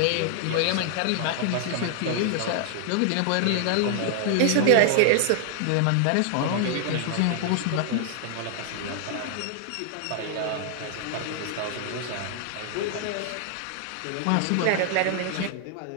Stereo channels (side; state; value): both; different; correlation 0.00